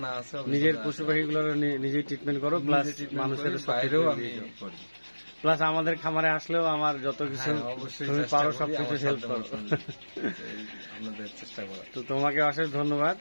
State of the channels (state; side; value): inverted; both; correlation -1.00